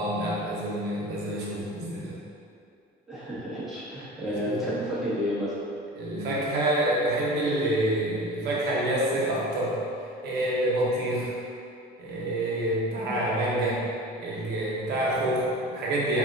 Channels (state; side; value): normal; both; correlation 0.35